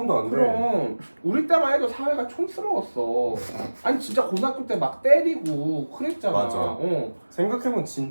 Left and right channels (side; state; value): both; inverted; correlation -1.00